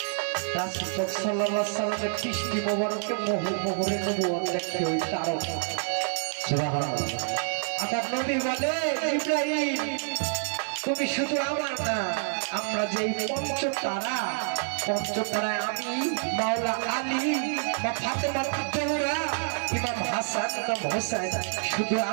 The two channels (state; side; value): silent; left; digital silence